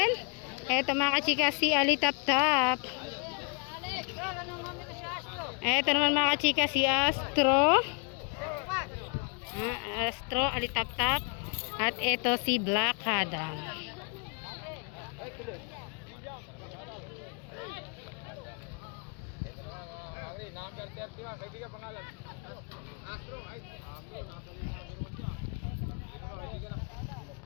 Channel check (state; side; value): quieter; right; 35.3 dB